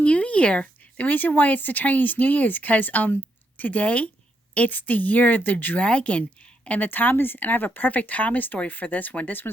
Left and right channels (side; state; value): both; normal; correlation 0.78